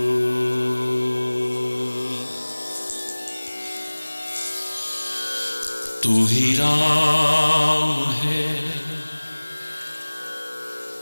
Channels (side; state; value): both; inverted; correlation -1.00